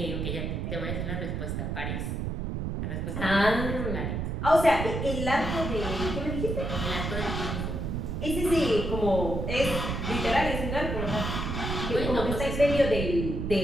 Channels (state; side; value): noise; right; rumble, 2 dB below the sound